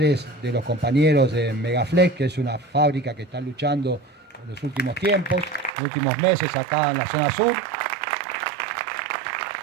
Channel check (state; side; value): drops out; left; at 5.7 s